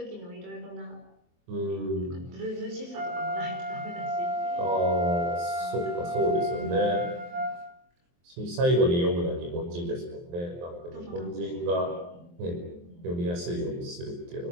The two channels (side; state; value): left; late; 23 ms